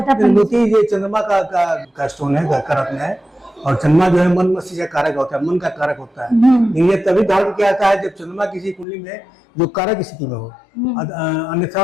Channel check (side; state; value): right; drops out; at 8.8 s